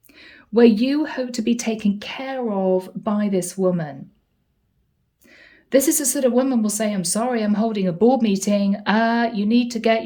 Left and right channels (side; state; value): both; identical; correlation 1.00